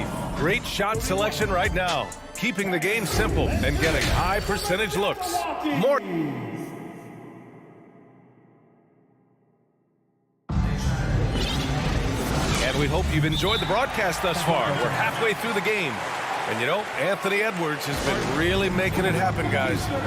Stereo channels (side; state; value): both; identical; correlation 1.00